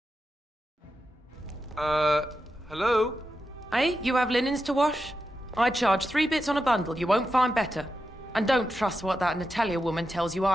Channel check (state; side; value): normal; both; correlation 0.89